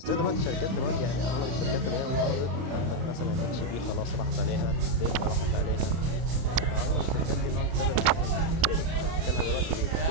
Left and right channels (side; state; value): left; late; 31 ms